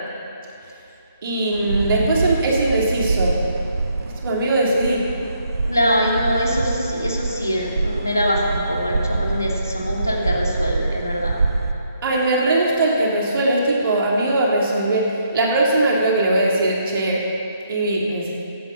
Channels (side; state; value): both; inverted; correlation -0.73